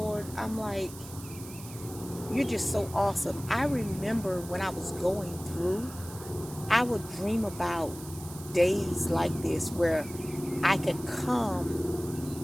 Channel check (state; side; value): noise; right; hiss, 16 dB below the sound